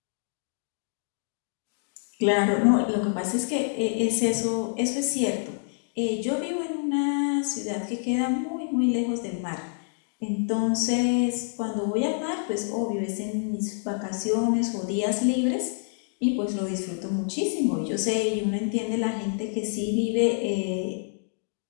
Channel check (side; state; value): right; silent; digital silence